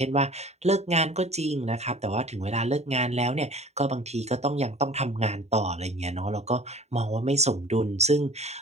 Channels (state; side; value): late; left; 0.32 ms